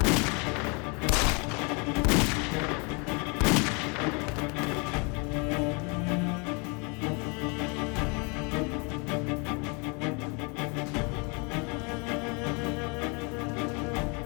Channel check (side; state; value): right; quieter; 32.2 dB